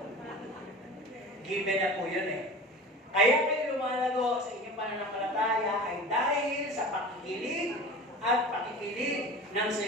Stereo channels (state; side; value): normal; both; correlation 0.36